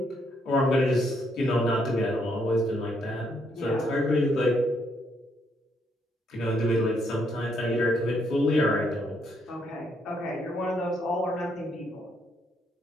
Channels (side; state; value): both; normal; correlation 0.74